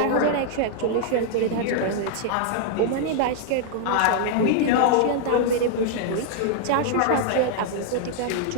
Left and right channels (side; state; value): both; different; correlation -0.01